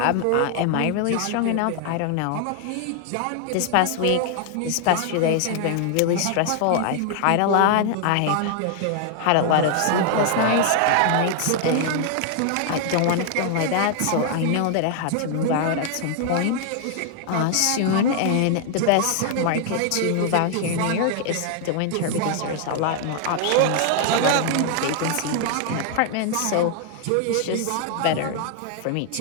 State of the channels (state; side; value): different; both; correlation 0.00